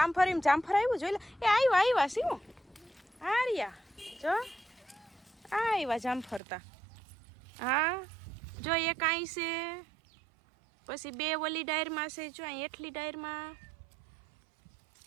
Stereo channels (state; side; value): drops out; left; at 6.4 s